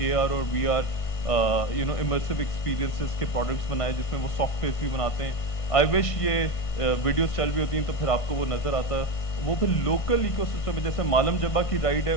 AR और VR, immersive experiences के products बनाए, जिसमें वो softwares भी बनाते हैं. I wish ये videos चल भी होती हैं तो फिर आपको वो नजर आता. वो फिर लोकल इकोसिस्टम में, जैसे मालम जब्बा की राइड है,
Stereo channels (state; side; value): late; right; 1.6 ms